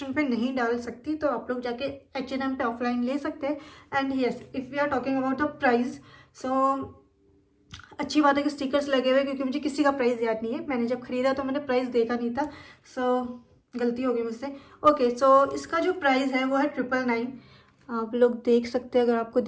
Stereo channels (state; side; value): identical; both; correlation 1.00